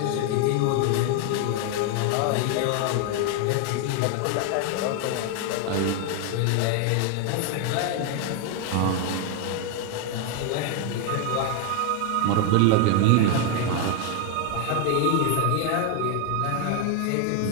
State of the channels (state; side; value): different; both; correlation 0.01